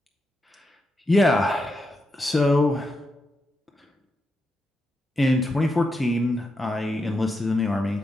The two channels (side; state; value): both; normal; correlation 0.85